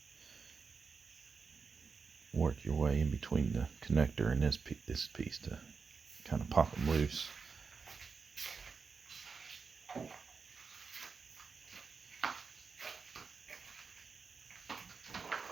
work your way in between the connector and this piece to kind of pop them loose.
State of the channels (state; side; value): quieter; left; 5.1 dB